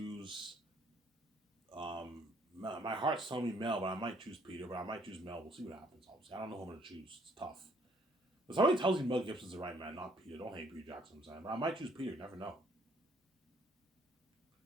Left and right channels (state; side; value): normal; both; correlation 0.64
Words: My heart's telling me Mel, but I might choose Peter. But I might choose Mel. We'll see what happens. Obviously, I don't know who I'm going to choose. It's tough. But somebody tells me Mel Gibson's the right man, not Peter. Don't hate Peter Jackson, I'm saying. But I might choose Peter. You never know.